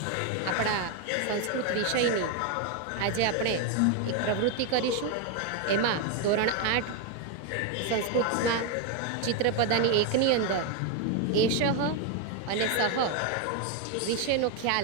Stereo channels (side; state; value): both; different; correlation 0.01